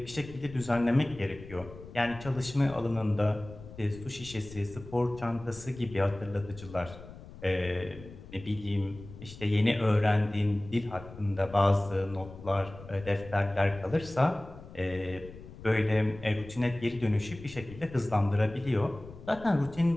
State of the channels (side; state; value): left; noise; rumble, 16 dB below the sound